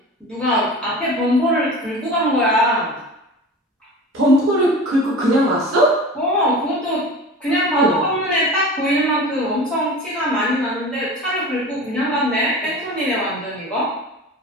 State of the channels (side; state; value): both; normal; correlation 0.35